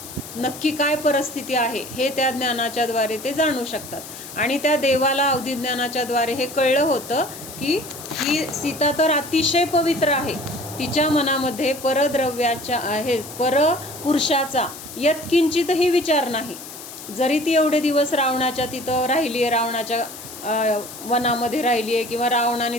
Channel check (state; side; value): noise; left; hiss, 13 dB below the sound